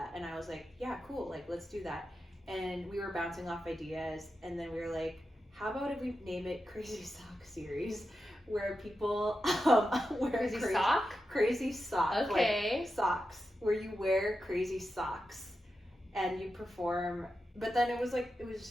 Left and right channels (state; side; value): normal; both; correlation 0.90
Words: and I was like, yeah, cool, like let's do that. And we were bouncing off ideas, and then we were like, how about if we name it Crazy Sock Series, where people wear crazy sock, okay, like socks, where you wear crazy socks and you perform. But then it was